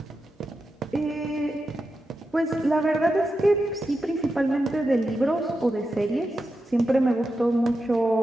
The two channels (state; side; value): normal; both; correlation 0.89